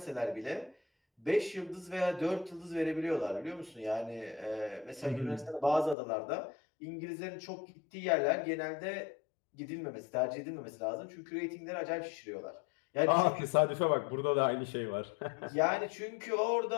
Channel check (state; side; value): drops out; right; at 6.0 s